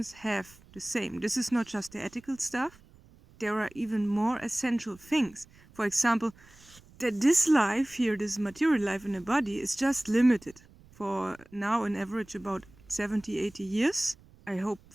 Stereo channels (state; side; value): noise; right; rumble, 25 dB below the sound